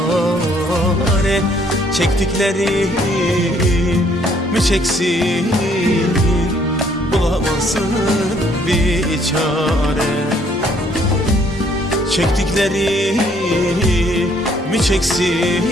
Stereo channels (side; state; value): both; normal; correlation 0.65